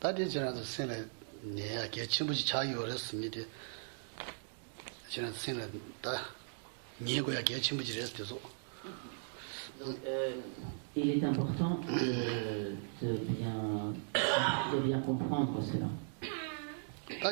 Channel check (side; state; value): left; silent; digital silence